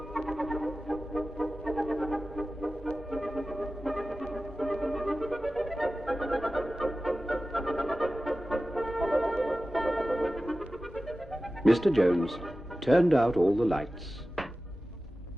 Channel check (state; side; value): normal; both; correlation 0.95